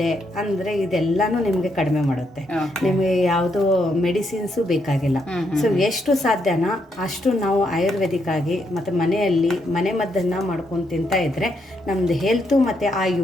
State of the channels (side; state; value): both; normal; correlation 0.78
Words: ಅಂದ್ರೆ ಇದೆಲ್ಲಾನು ನಿಮ್ಗೆ ಕಡಿಮೆ ಮಾಡುತ್ತೆ. ನಿಮ್ಗೆ ಯಾವುದು ಮೆಡಿಸಿನ್ಸು ಬೇಕಾಗಿಲ್ಲ. ಸೊ ಎಷ್ಟು ಸಾಧ್ಯನಾ ಅಷ್ಟು ನಾವು ಆಯುರ್ವೇದಿಕ್ ಆಗಿ ಮತ್ತೆ ಮನೆಯಲ್ಲಿ ಮನೆ ಮದ್ದನ್ನ ಮಾಡ್ಕೊಂಡು ತಿಂತಾ ಇದ್ರೆ ನಮ್ದು ಹೆಲ್ತ್ ಮತ್ತೆ